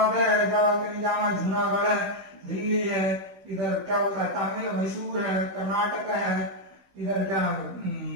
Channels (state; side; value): late; left; 16 ms